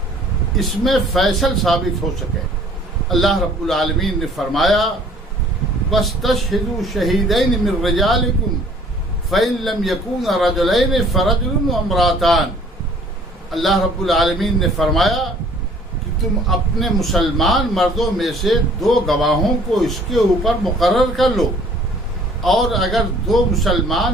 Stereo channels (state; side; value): normal; both; correlation 0.55